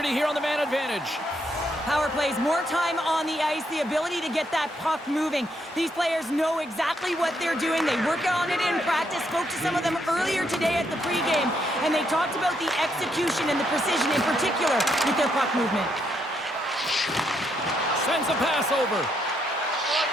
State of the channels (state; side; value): normal; both; correlation 0.76